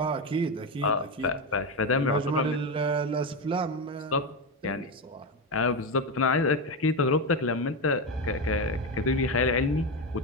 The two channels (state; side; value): normal; both; correlation 0.13